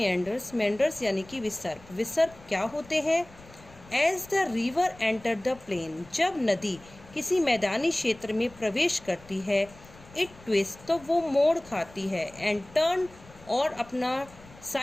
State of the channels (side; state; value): left; noise; rumble, 22 dB below the sound